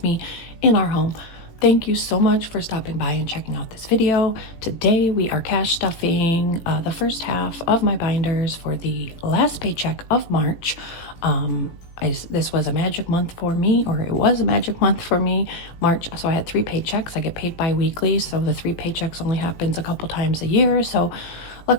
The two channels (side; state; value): right; late; 18 ms